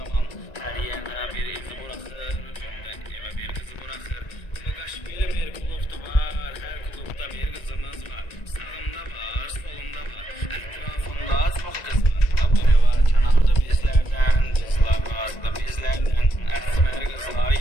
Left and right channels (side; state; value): right; late; 1.9 ms